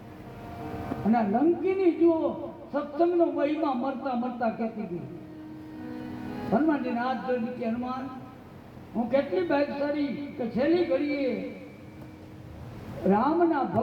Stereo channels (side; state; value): both; identical; correlation 1.00